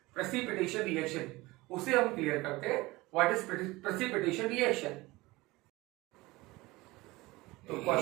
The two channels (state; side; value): quieter; left; 21.0 dB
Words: प्रेसिपिटेशन रिएक्शन, उसे हम क्लियर करते हैं। What is precipitation reaction? तो